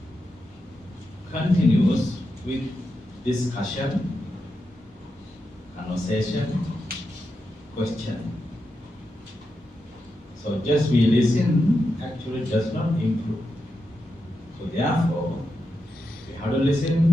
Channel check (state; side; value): normal; both; correlation 0.87